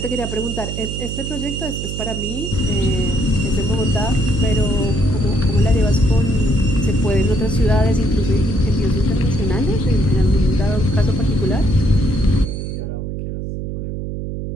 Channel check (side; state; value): right; noise; hum, 5 dB below the sound